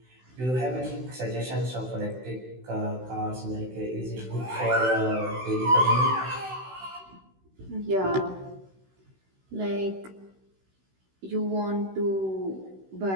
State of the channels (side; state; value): left; late; 16 ms